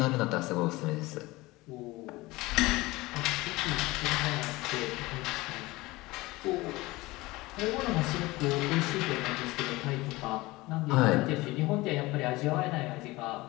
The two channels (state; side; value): quieter; right; 20.7 dB